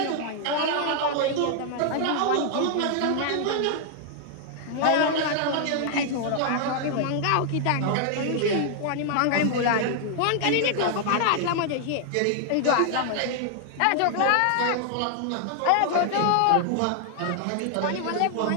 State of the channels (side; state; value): both; different; correlation 0.00